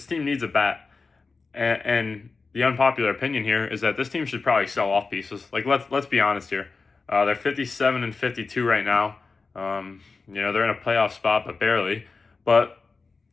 team needs a bat, and the unpopular opinion here is that this team should probably sell off pieces. Like, let's be honest here. They're 57 and 52 right now. They're in a playoff spot, but barely. But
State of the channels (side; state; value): right; quieter; 4.3 dB